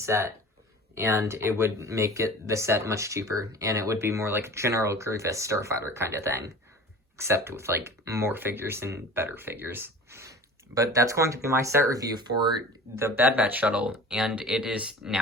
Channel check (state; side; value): normal; both; correlation 0.40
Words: and it would make the set much cheaper, and it would be more like General Grievous Starfighter kind of thing, except with like more figures and better figures. But that's going to be my set review for the Bad Batch Shuttle, and it is